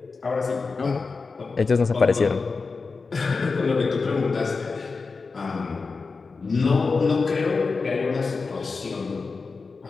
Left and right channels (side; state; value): right; quieter; 4.4 dB